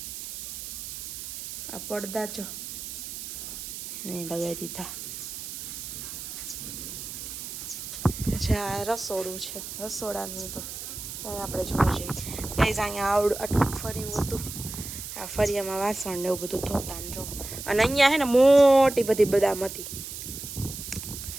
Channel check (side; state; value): right; noise; hiss, 8 dB below the sound